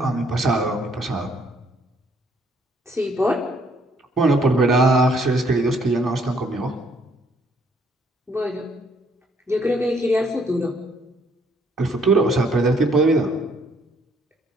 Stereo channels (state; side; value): normal; both; correlation 0.66